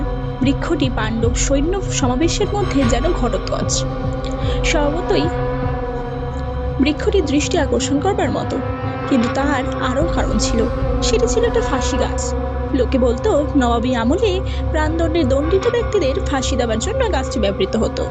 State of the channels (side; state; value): both; identical; correlation 1.00